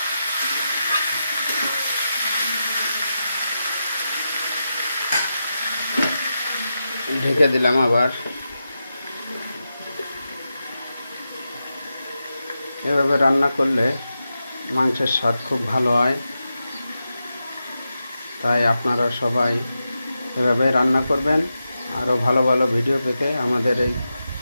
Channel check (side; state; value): both; inverted; correlation -0.89